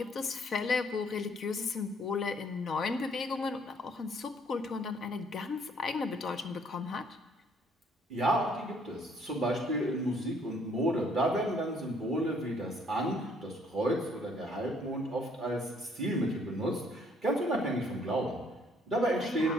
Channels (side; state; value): both; normal; correlation 0.63